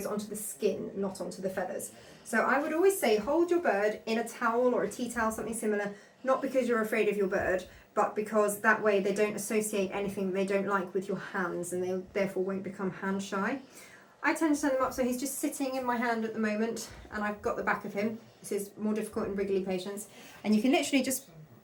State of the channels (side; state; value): both; identical; correlation 1.00